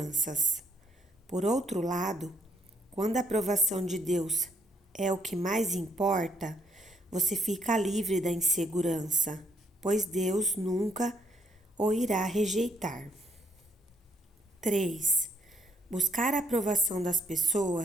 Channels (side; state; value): both; normal; correlation 0.72